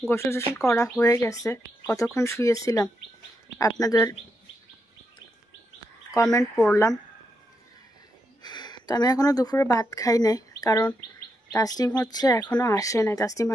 গোসল টোসল করা হয়ে গেছে। কতক্ষণ শুয়েছিলাম আপনাদের কমেন্ট পড়লাম। তো আমি এখনও দুপুরে ভাত খাই নাই, কারণ তাসনিম হচ্ছে এখনও আসে নাই। তাসনিম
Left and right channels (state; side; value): normal; both; correlation 0.82